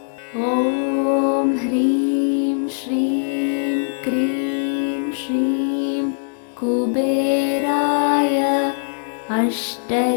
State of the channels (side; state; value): right; silent; 65 dB below the other